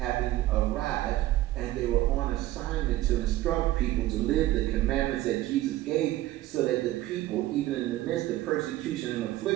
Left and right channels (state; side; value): quieter; left; 15.9 dB